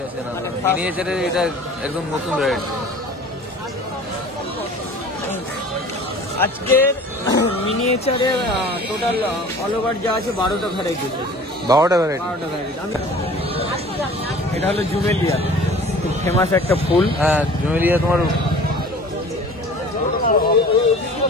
না, মিনিয়েচারের এটা একদম নতুন ভ্যারাইটি। আজকের মিনিয়েচারে টোটাল অল ওভার যা আছে 12টা ভ্যারাইটি। 12টা ভ্যারাইটি। এটা হলো জুমেলিয়া, খুব ফেমাস একটা ফুল। হ্যাঁ জুমেলিয়া তোমার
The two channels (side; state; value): both; normal; correlation 0.45